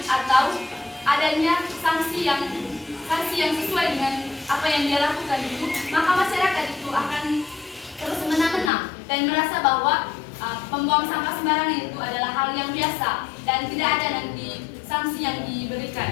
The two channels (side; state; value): right; drops out; at 8.7 s